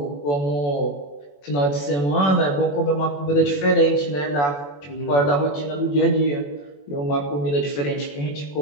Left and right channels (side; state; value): right; late; 21 ms